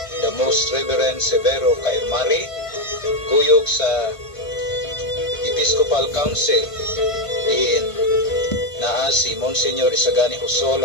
the Most Reverend Severo Cairmari, kuyog sa Episcopal Council diin naa si Monsignor Isagani Husol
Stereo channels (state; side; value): late; right; 1.5 ms